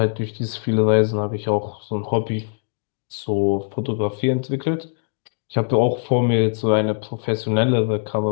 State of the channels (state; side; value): silent; right; digital silence